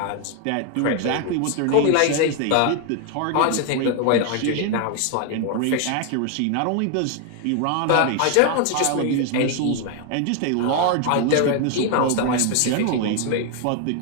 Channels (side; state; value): both; different; correlation 0.01